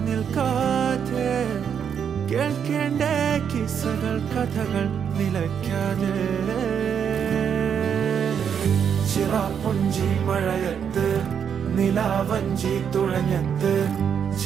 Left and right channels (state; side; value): quieter; left; 7.7 dB